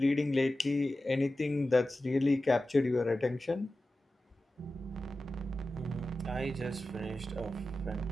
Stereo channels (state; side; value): normal; both; correlation 0.94